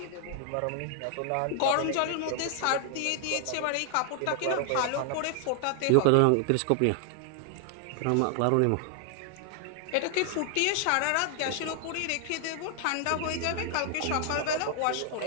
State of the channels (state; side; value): different; both; correlation 0.00